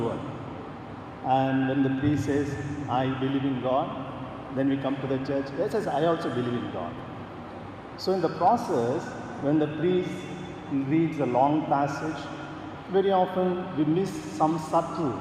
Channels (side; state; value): both; identical; correlation 1.00